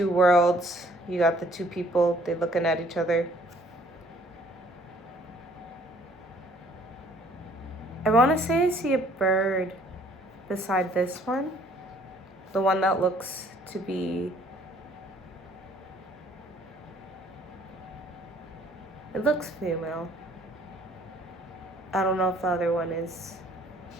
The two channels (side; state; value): both; normal; correlation 0.59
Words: worlds. You got the two people, they're looking at each other. I want to say I see a bird beside this one. The one that looks to be... It looks female. I don't know if the other one is.